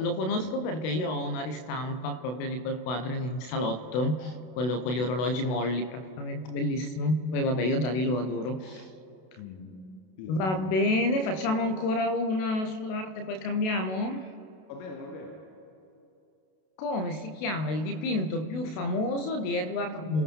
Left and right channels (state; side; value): late; right; 32 ms